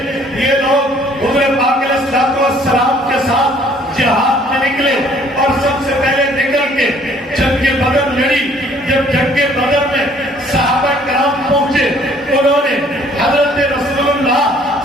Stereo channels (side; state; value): both; normal; correlation 0.59